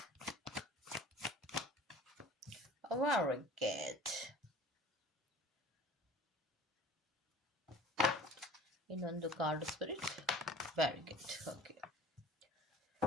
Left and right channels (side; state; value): both; normal; correlation 0.44